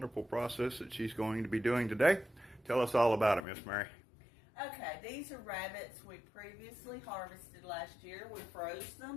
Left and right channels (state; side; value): drops out; right; at 3.5 s